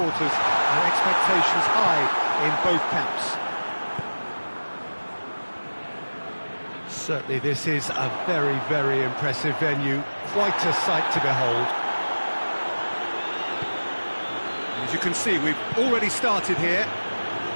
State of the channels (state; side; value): inverted; both; correlation -1.00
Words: and expectations high in both camps. Certainly this is a very, very impressive venue, quite a sight to behold. As you can see, we've already started here.